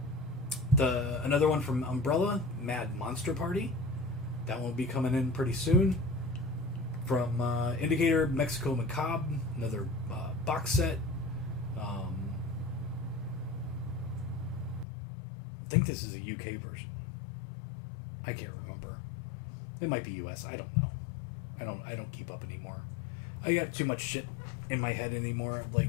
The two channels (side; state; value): right; drops out; at 14.9 s